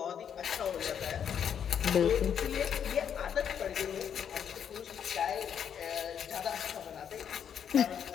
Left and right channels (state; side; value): quieter; right; 8.3 dB